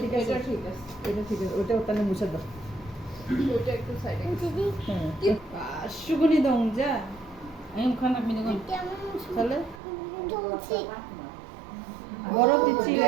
ঠিক আছে এটা ঠিক আছে এটা ঠিক আছে ওটাও তাহলে মুছে দাও ওটা একটু সাইডে দিদি হ্যাঁ সুগুনি দং যা আমি খানা মিনে কোন কেমন তাহলে চলছে বরফ দিচ্ছি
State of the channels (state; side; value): drops out; left; at 9.8 s